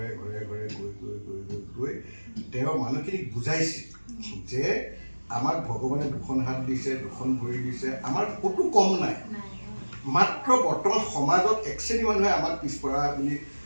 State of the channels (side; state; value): both; inverted; correlation -1.00